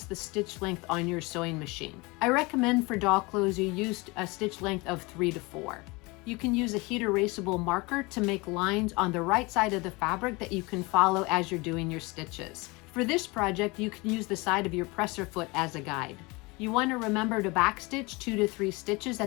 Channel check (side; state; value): right; quieter; 25.3 dB